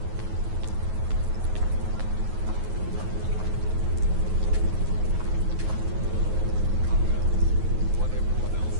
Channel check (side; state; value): left; late; 9.4 ms